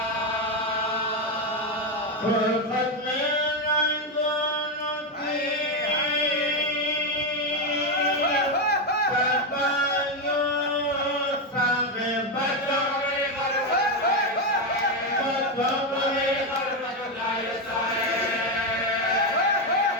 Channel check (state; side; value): normal; both; correlation 0.08